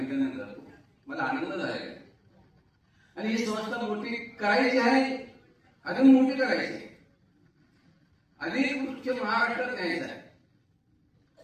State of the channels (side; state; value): both; identical; correlation 1.00